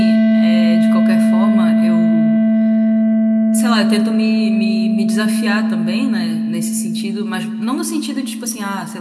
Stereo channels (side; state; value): both; identical; correlation 1.00